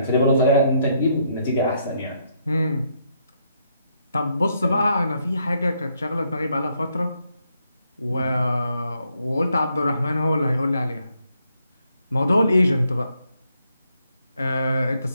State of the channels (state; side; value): inverted; both; correlation -0.75